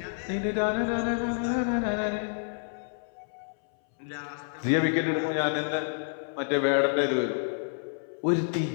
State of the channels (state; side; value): silent; right; 59 dB below the other